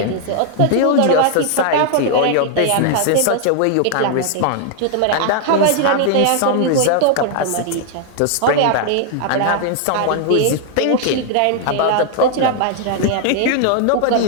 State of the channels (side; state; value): both; different; correlation 0.00